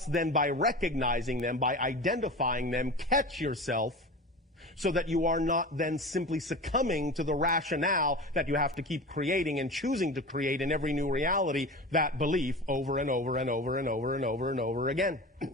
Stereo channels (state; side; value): normal; both; correlation 0.32